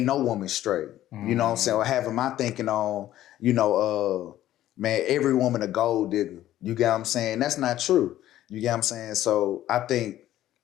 no woman straight. You know what I'm saying? Or having my thinking on, you know, man, every woman a gold digger. You get what I'm saying? That's not true. You get what I'm saying? So I think,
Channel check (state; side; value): quieter; right; 13.4 dB